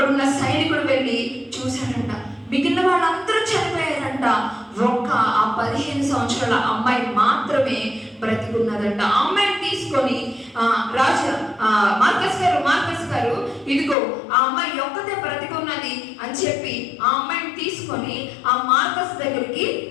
సైనికుడు వెళ్ళి చూశాడంట, మిగిలిన వాళ్ళందరూ చనిపోయారంట, ఒక్క ఆ 15 సంవత్సరాల అమ్మాయి మాత్రమే బ్రతికున్నదంట. ఆ అమ్మాయిని తీసుకొని మార్కస్ గారు ఇదిగో ఆ అమ్మాయి ఒక్కతే బ్రతికున్నది అని చెప్పి ఆ అమ్మాయిని తీసుకొని ఆ మార్కస్ దగ్గరికి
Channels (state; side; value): drops out; right; at 14.0 s